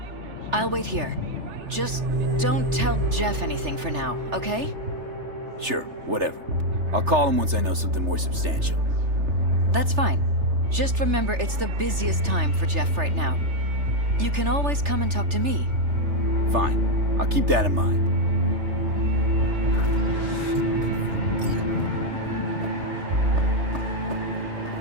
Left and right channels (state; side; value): late; left; 3.3 ms